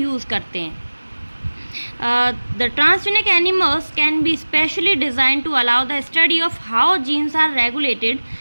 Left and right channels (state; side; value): inverted; both; correlation -1.00